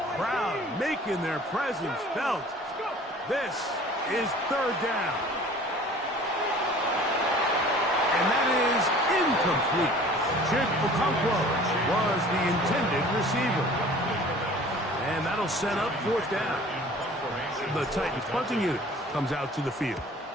crowd making their presence felt. This is 3rd down. And that is incomplete. Chip Okonkwo was the intended receiver. And that'll set up 4th down. The Titans punting unit comes out to the field.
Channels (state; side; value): normal; both; correlation 0.47